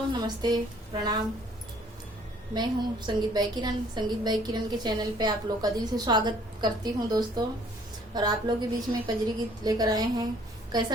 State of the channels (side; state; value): both; normal; correlation 0.59